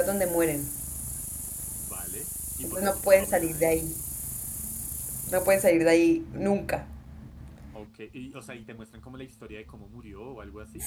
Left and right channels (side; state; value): both; identical; correlation 1.00